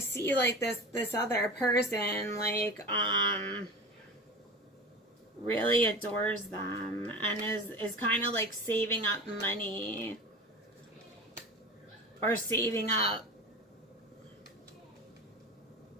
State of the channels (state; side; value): normal; both; correlation 0.32